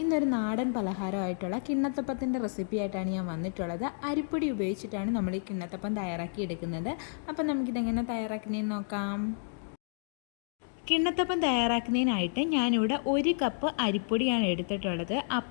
ഇന്നൊരു നാടൻ പലഹാരമായിട്ടുള്ള കിണ്ണത്തപ്പത്തിൻ്റെ റെസിപ്പി ആയിട്ടാണ് ഞാൻ വന്നിട്ടുള്ളത്. അരിപ്പൊടി ഉപയോഗിച്ചിട്ടാണ് നമ്മൾ ഈ കിണ്ണത്തപ്പം തയ്യാറാക്കി എടുക്കുന്നത്. അപ്പം നമുക്കിതെങ്ങനെ തയ്യാറാക്കുന്നതെന്ന് നോക്കാം. കിണ്ണത്തപ്പം തയ്യാറാക്കുന്നതിനായിട്ട് ഞാനിവിടെ 1 കപ്പ് അരിപ്പൊടിയാണ് എടുത്തിട്ടുള്ളത്.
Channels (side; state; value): right; silent; digital silence